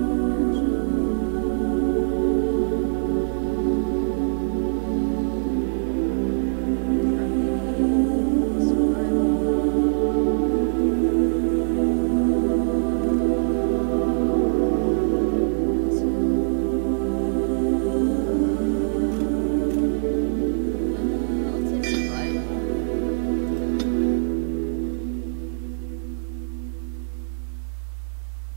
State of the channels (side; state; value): left; silent; digital silence